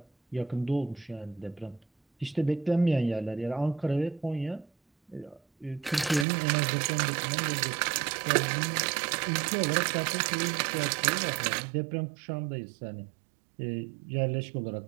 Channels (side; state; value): left; drops out; at 6.2 s